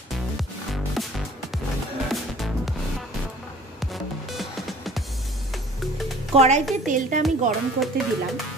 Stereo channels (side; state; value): both; normal; correlation 0.50